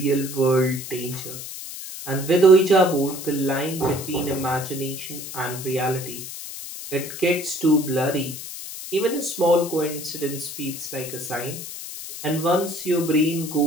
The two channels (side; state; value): left; noise; hiss, 10 dB below the sound